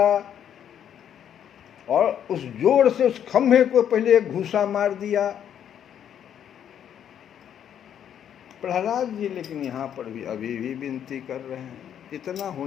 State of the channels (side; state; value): right; quieter; 9.4 dB